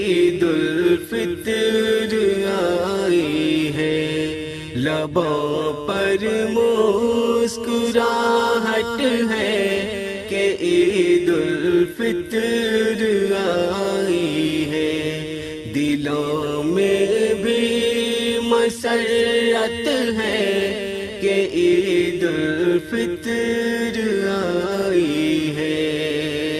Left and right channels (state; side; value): identical; both; correlation 1.00